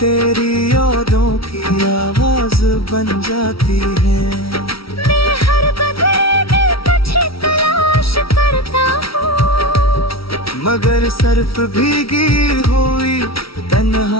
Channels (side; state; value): right; late; 0.75 ms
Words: यादों की आवाज बन जाती है। मैं हर बदले में तुझे तलाश करता हूँ, मगर सिर्फ भीगी हुई